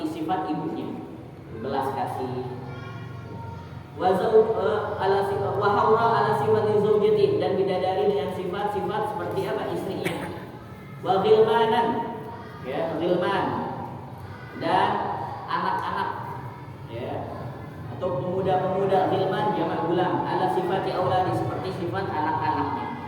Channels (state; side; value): identical; both; correlation 1.00